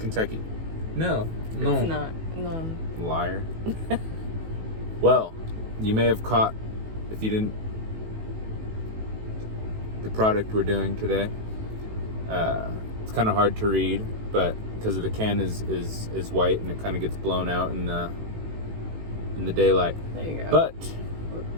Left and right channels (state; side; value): late; left; 18 ms